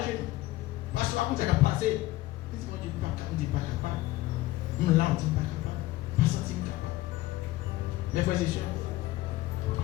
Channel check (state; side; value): quieter; right; 17.3 dB